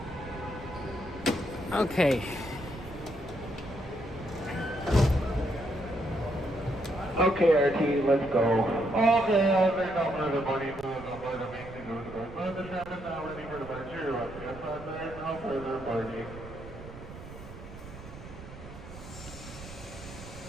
Okay. Okay, RT, let's go. Okay, there's no further money moving on board the main thing over the board. But the tram is now ready for departure. Yes, there's no further boarding.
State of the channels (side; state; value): right; noise; rumble, 14 dB below the sound